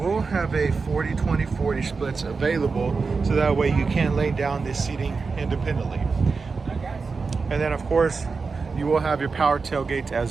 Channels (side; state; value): left; quieter; 4.6 dB